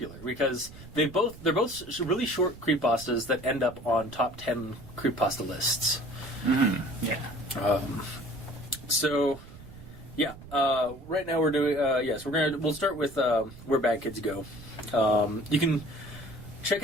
because they're both really short creepypastas that end up on top 10 creepypasta lists. Mm-hmm. Yeah. So, yeah. Right now we're doing we'll start with Where Bad Kids Go. You can check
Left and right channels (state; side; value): noise; right; rumble, 17 dB below the sound